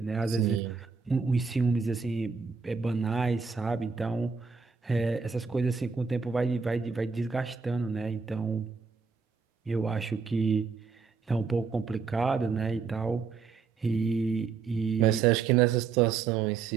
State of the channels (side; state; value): left; quieter; 5.3 dB